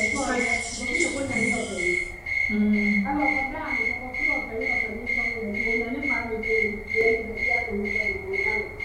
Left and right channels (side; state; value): both; identical; correlation 1.00